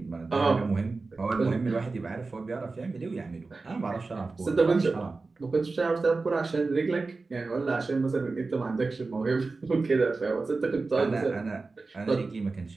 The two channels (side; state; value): left; quieter; 3.8 dB